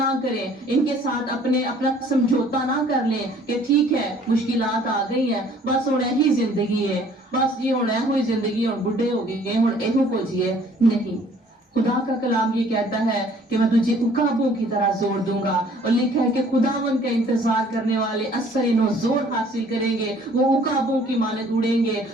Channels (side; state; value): both; normal; correlation 0.56